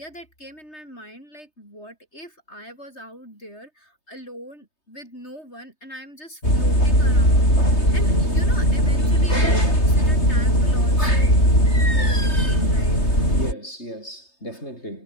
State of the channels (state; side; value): late; right; 3.3 ms